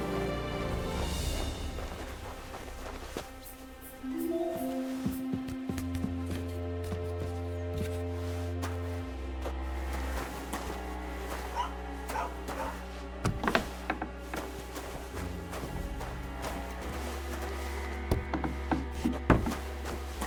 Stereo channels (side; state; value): both; identical; correlation 1.00